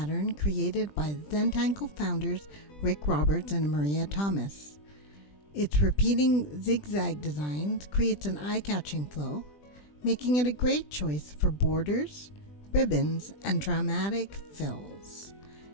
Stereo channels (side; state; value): right; late; 20 ms